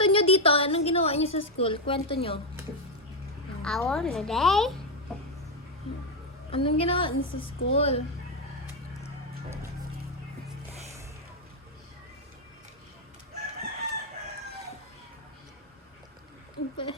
niyo dito. Anong ginawa niyo sa school? Kwento niyo. Ako na day. Anong ginawa niyo sa school?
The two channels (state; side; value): normal; both; correlation 0.04